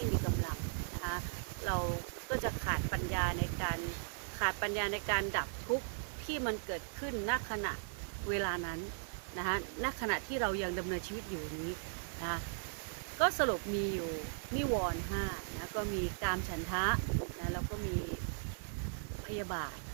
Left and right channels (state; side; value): silent; left; digital silence